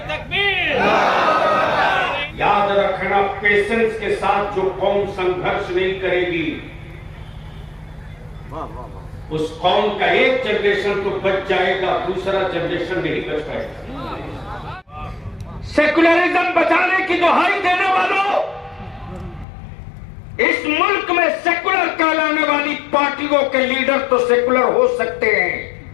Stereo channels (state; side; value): drops out; right; at 19.5 s